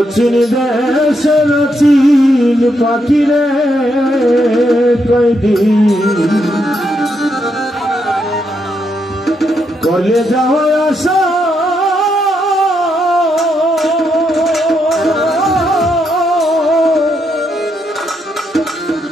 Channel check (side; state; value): both; normal; correlation 0.79